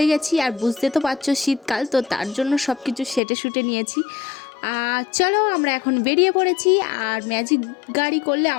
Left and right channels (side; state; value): right; drops out; at 3.2 s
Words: গেছি। আর বুঝতে তো পারছো শীতকাল, তো তার জন্য সব কিছু সেটে নিয়েছি। চলো আমরা এখন বেরিয়ে পড়েছি। আর ম্যাজিক গাড়ি করলে